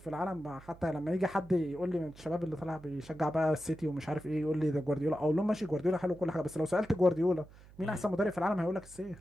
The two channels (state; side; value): noise; right; hum, 21 dB below the sound